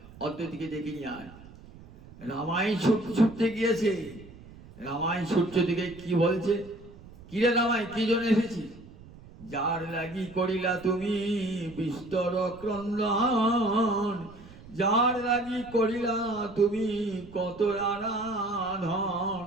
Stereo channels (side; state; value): right; noise; rumble, 19 dB below the sound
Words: অদ্বৈতকে ডেকে নিয়ে আয়। রামাই ছুটতে গিয়েছে, রামাই ছুটছে দিকে কি বলছে, কিরে রামাই কি জন্য এসেছিস? যার লাগি করিলা তুমি বিস্তর ক্রন্দন, যার লাগি করিলা তুমি কত আরাধন,